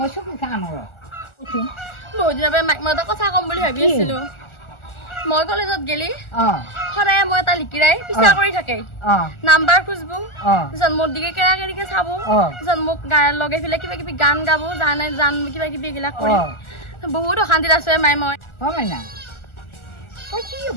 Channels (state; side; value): late; right; 1.4 ms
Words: চকু খা নৰ বহুত দিনৰ মাক মই এটা কথা কম বুলি ভাবি আছিলো মই কলেজত গেলি সদায় মই এটা লিকিৰাই পিছা কৰি থাকে নাম্বাৰ খুঁজবো মোৰ দিকে কেৰা কেৰিকে চাব মোক লগে ফেলে কিবা কিবি গান গাব জান কিবা কিবি এইবিলাক কৰি বহুত অশান্তিত আছো মাই মই মাইনা তই কি